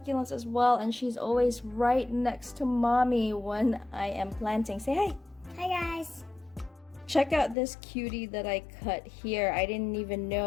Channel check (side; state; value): right; drops out; at 7.6 s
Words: as well, and she's always right next to mommy when I am planting. Say hi. Hi guys. Check out this cutie that I cut here. I didn't even